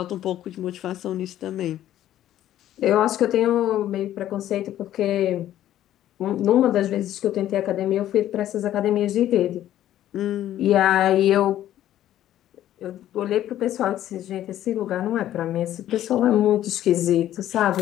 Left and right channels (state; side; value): quieter; right; 12.4 dB